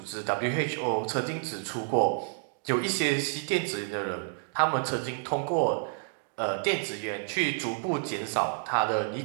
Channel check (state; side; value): silent; left; digital silence